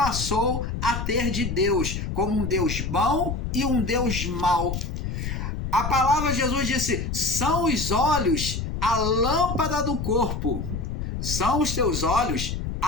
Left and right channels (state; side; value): noise; left; rumble, 4 dB below the sound